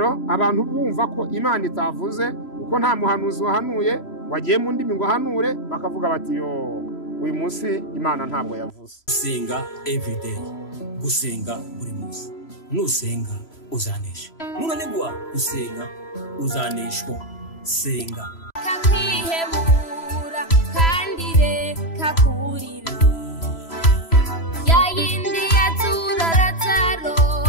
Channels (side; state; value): right; late; 3.0 ms